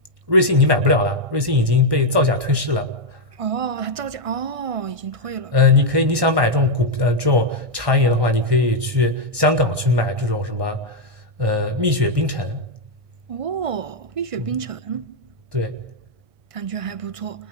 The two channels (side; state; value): left; late; 1.1 ms